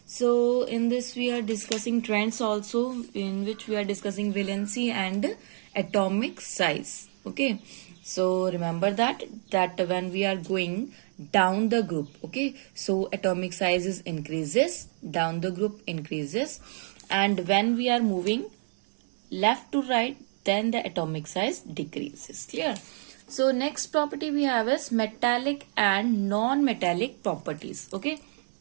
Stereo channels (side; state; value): left; silent; 59 dB below the other